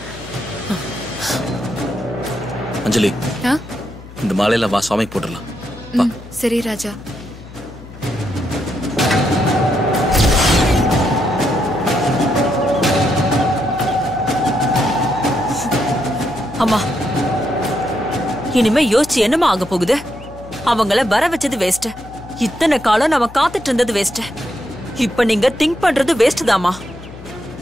அஞ்சலி இந்த மாலையில வா சுவாமிக்கு போட்டுடலாம். சரி ராஜா. அம்மா இனிமே யோசிச்சு என்னமா ஆக போகுது? அவங்கள வர வச்சது வேஸ்ட். இத்தனை காலம் நம்ம காத்துட்டு இருந்தது வேஸ்ட். இப்ப நீங்க திங்க் பண்றது வேஸ்ட் தாமா.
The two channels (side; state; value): left; noise; hum, 17 dB below the sound